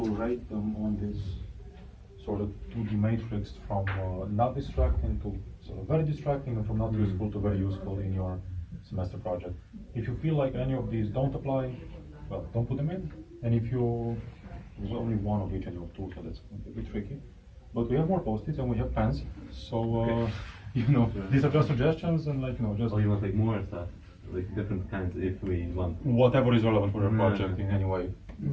rate them on this sort of 2D matrix from not distracting to sort of very distracting, and from not useful to very useful in your semester project. If you feel like any of these don't apply, well, don't put them in. And if there's only one of each and you have two, so that's going to be a bit tricky. But we have more post-its and we have pens, so these are just suggestions and just Oh, you want like more stuff, like different kinds if we want. whatever is relevant for your Yeah. project in any way.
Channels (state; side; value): identical; both; correlation 1.00